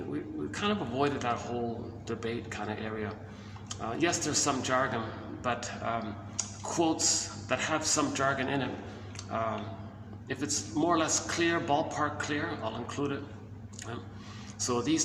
We kind of avoided that whole debate kind of area. Yes, there's some jargon, but quotes that have some jargon in it, if it's more or less clear, ballpark clear, I'll include it. So these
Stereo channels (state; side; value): identical; both; correlation 1.00